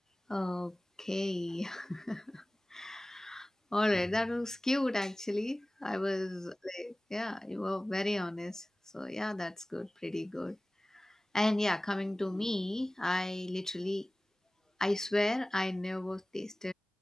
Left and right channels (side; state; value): both; normal; correlation 0.98